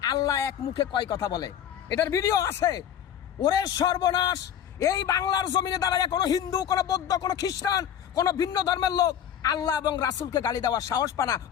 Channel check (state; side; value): quieter; right; 9.6 dB